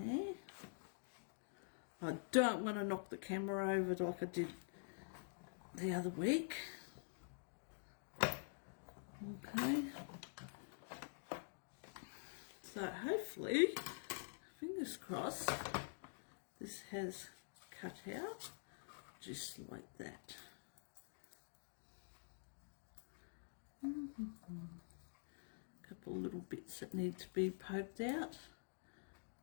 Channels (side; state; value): right; silent; digital silence